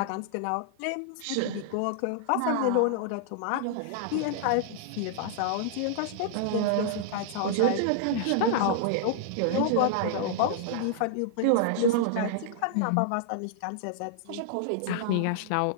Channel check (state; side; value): different; both; correlation -0.01